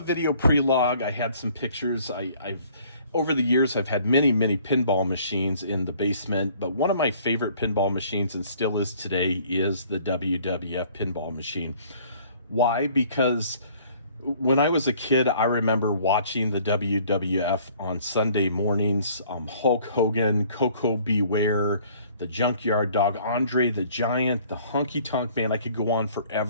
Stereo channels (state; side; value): inverted; both; correlation -0.56